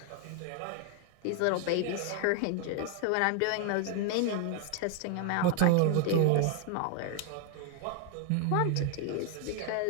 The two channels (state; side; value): different; both; correlation 0.00